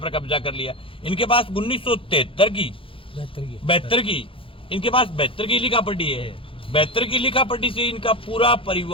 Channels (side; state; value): right; late; 0.26 ms